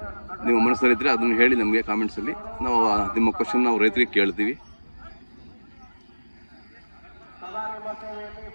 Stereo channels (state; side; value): inverted; both; correlation -1.00